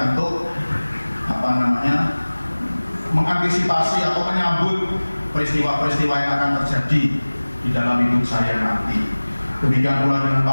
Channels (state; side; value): inverted; both; correlation -1.00